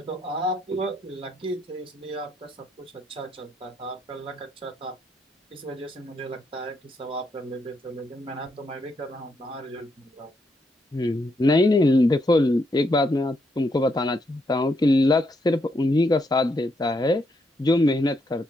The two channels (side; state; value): both; normal; correlation 0.77